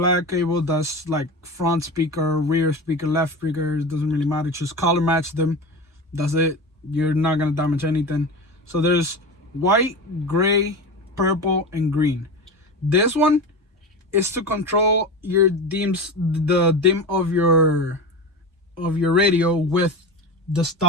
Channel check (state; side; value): normal; both; correlation 0.26